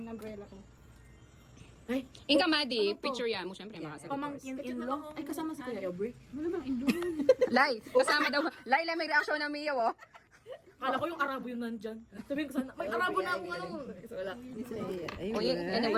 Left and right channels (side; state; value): both; identical; correlation 1.00